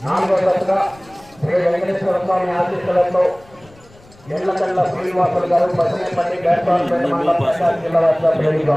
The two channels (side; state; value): left; noise; rumble, 26 dB below the sound